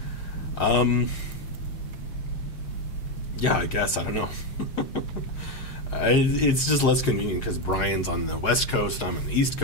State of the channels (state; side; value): late; right; 7.3 ms